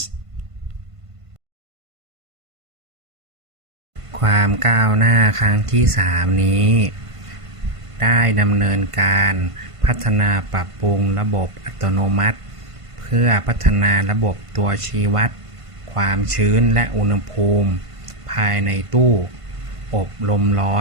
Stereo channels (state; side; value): late; left; 1.5 ms